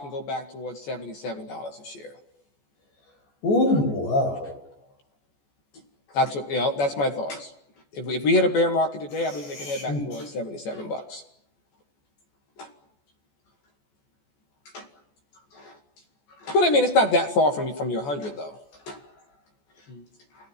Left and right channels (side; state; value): right; late; 14 ms